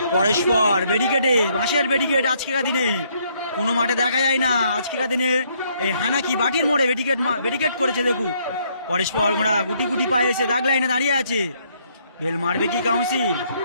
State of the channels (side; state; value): both; inverted; correlation -0.69